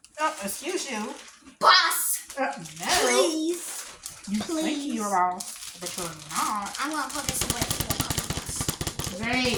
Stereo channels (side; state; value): both; identical; correlation 1.00